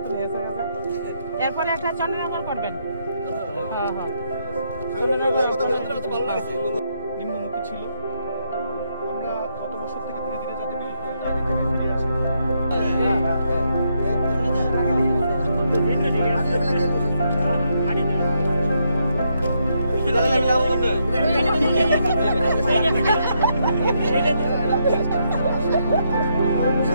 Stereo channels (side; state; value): both; inverted; correlation -0.78